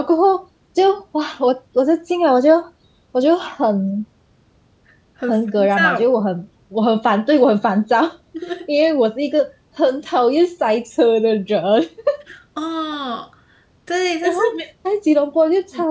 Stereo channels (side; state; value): both; identical; correlation 1.00